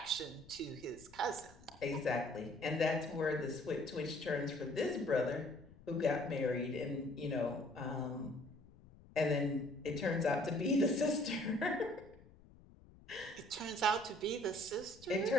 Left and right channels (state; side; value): noise; left; rumble, 22 dB below the sound